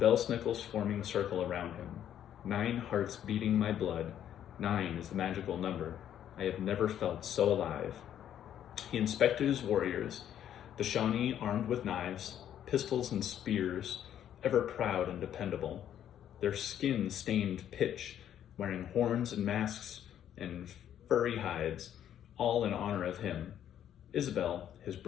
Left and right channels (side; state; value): right; quieter; 10.4 dB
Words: snickles forming a circle around him. 9 hearts beating my blood. 9 is the magical number. I have never felt so alive. He inspected his warriors, the Shawnee armed with knives, pistols and spears, ever proud and dependable. Their skin stained pitch, wearing horns and masks and furry hides, all in honor of him. Isabel, his